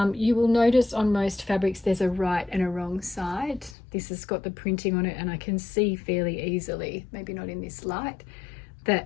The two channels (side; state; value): right; drops out; at 3.8 s